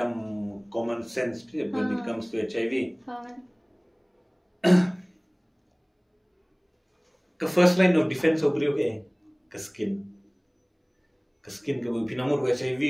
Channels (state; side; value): identical; both; correlation 1.00